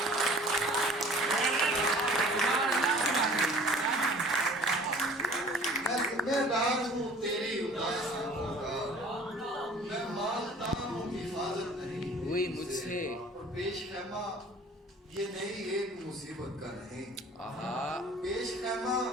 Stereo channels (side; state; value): both; normal; correlation 0.48